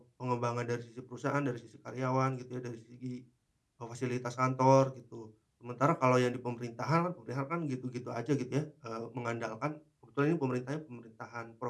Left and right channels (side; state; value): both; identical; correlation 1.00